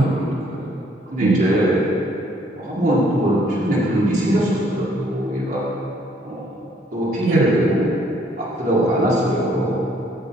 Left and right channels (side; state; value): both; normal; correlation 0.64